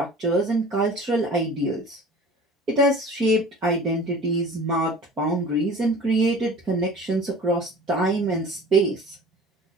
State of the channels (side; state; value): both; normal; correlation 0.42